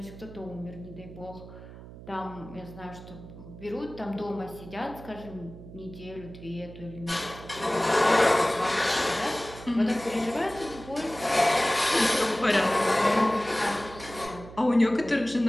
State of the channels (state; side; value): noise; right; hum, 16 dB below the sound